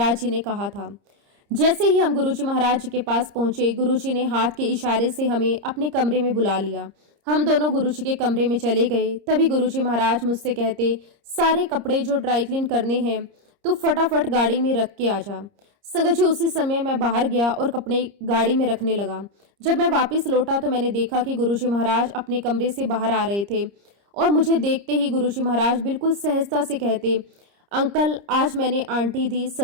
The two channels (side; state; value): left; late; 30 ms